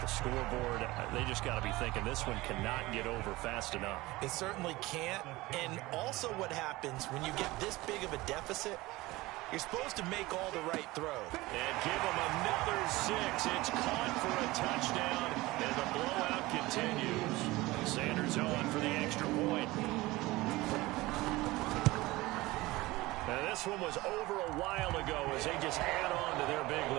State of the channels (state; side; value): quieter; left; 20.0 dB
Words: scoreboard, they just got to be thinking this one cannot get over fast enough. It certainly can't. And also what happens when you get this big of a deficit, you're supposed to make all the right throws. And give him another 6. It's caught for a touchdown, and the blowout continues. Sanders on for the extra point. Now, this one was over a while ago as they just add on to their big